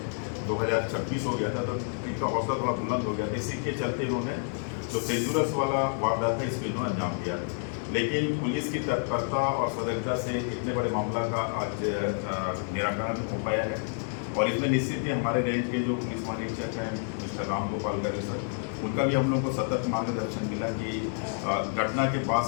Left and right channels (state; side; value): silent; right; 59 dB below the other